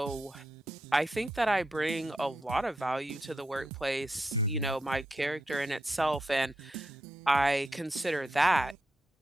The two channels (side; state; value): both; normal; correlation 0.85